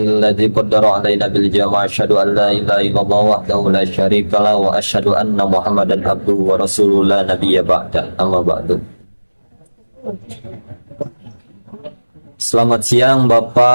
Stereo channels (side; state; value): both; inverted; correlation -1.00